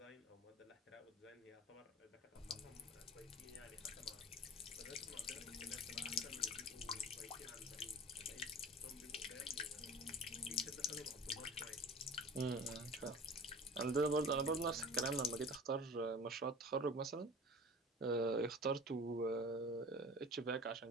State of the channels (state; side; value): normal; both; correlation 0.38